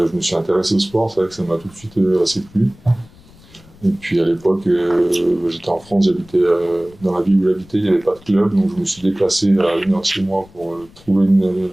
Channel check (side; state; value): left; noise; rumble, 25 dB below the sound